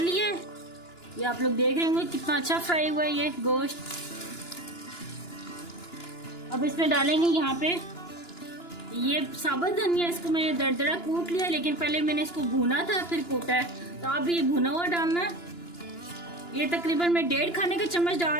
है। ये आप लोग देख रहे होंगे कितना अच्छा फ्राई हुआ है ये गोश्त। अब इसमें डालेंगे यहाँ पे ये साबुत धनिया। इसको मैंने दरदरा कूट लिया, लेकिन पहले मैंने इसको भुना था फिर कूटा है। तो आप भी ये भुना हुआ डालना। ये तकरीबन मैं 1.5 खाने का चम्मच डाल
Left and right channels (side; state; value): right; late; 2.9 ms